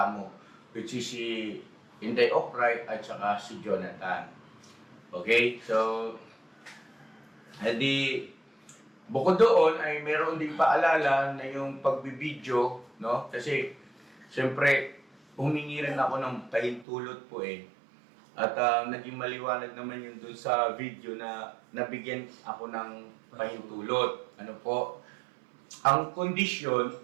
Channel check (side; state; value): left; drops out; at 16.9 s